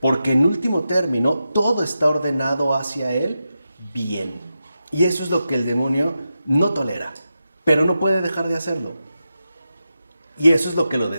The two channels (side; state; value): both; inverted; correlation -0.90